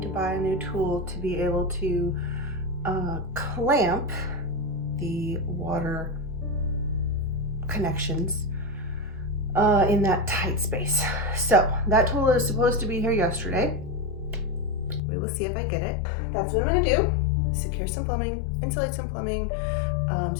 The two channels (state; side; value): drops out; right; at 15.0 s